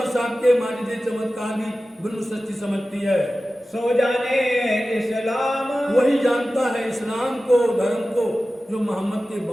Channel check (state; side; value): normal; both; correlation 0.95